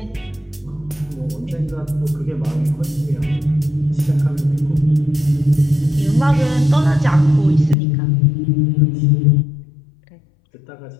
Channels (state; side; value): drops out; right; at 7.8 s